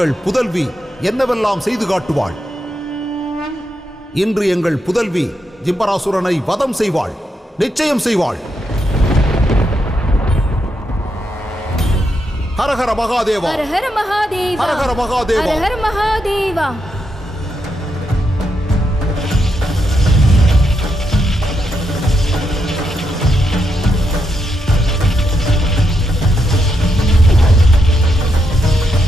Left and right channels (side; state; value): both; normal; correlation 0.82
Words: புதல்வி என்னவெல்லாம் செய்து காட்டுவாள். இன்று எங்கள் புதல்வி ஜிம்பராசுரனை வதம் செய்வாள், நிச்சயம் செய்வாள். ஹரஹர மகாதேவா, ஹரஹர மகாதேவா, ஹரஹர மகாதேவா, ஹரஹர மகாதேவா.